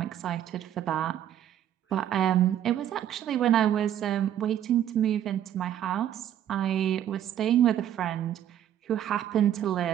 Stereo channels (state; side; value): quieter; left; 10.6 dB